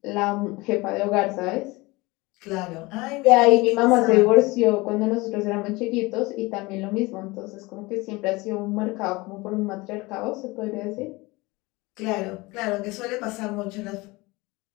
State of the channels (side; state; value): right; quieter; 22.8 dB